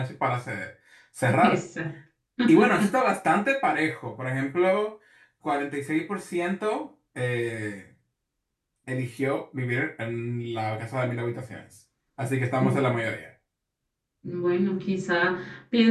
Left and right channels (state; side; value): identical; both; correlation 1.00